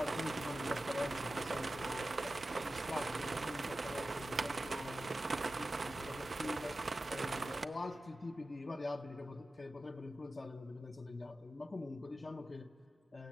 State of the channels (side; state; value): both; normal; correlation 0.94